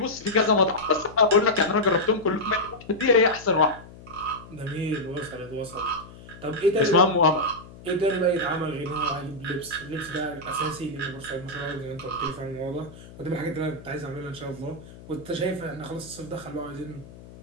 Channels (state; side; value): noise; left; hum, 18 dB below the sound